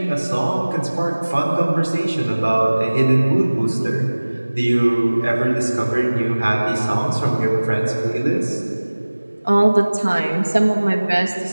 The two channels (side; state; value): both; inverted; correlation -1.00